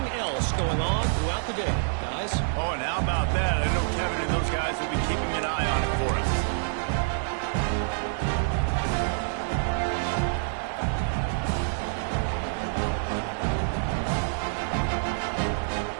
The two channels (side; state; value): left; silent; digital silence